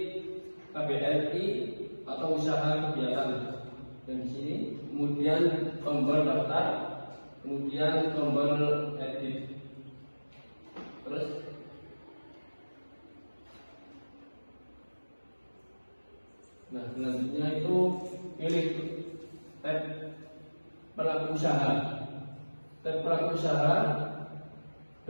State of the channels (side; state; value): both; inverted; correlation -1.00